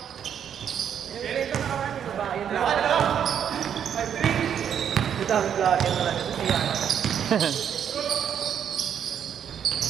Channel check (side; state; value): left; quieter; 8.7 dB